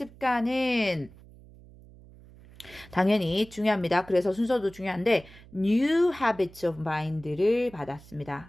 당연히 중요합니다. 그래서 순서도 중요한데 new habits of mind를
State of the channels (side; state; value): right; noise; hum, 22 dB below the sound